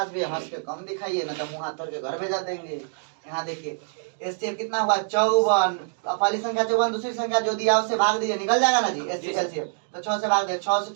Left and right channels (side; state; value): left; silent; digital silence